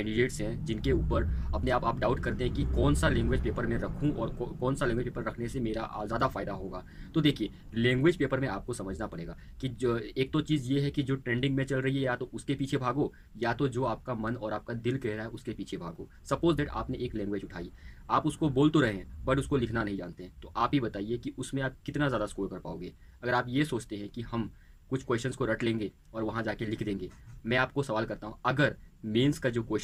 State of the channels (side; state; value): both; identical; correlation 1.00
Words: हैं जिनके ऊपर अपने आप डाउट करते हैं कि कौन सा लैंग्वेज पेपर मैं रखूं और कौन सा लैंग्वेज पेपर रखने से मेरा ज़्यादा फायदा होगा। तो देखिए, लैंग्वेज पेपर में आपको समझना पड़ेगा कि जो एक तो चीज़ ये है कि जो ट्रेंडिंग में चल रही है या तो उसके पीछे भागो, या तो जो आपका मन और आपका दिल कह रहा है उसके पीछे भागो। सपोज दैट आपने एक लैंग्वेज उठाई, आप उसको बोल तो रहे हैं बट उसको लिखना नहीं जानते हैं, तो आप ही बताइए कि उसमें आप कितना ज़्यादा स्कोर कर पाओगे। अगर आप ये सोचते हैं कि हम कुछ क्वेश्चंस को रट लेंगे और वहाँ जाके लिख देंगे, मैं आपको सवाल करता हूँ, अगर मेंस का जो